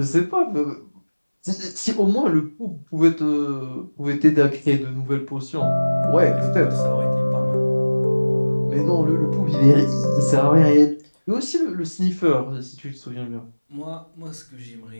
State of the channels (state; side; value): inverted; both; correlation -1.00